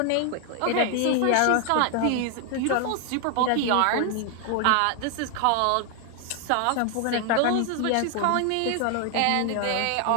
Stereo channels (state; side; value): different; both; correlation 0.00